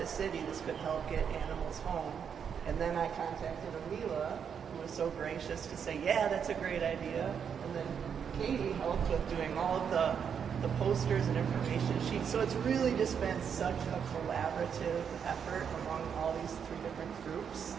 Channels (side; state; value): left; quieter; 7.4 dB